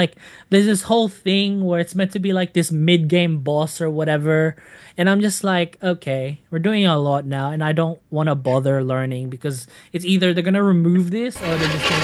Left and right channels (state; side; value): identical; both; correlation 1.00